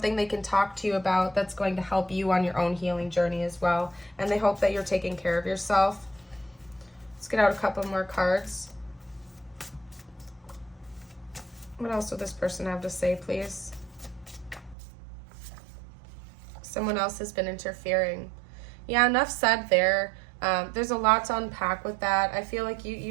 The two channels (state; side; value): drops out; left; at 14.8 s